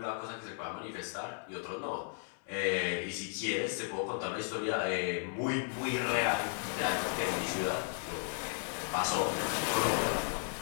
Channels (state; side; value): silent; right; 54 dB below the other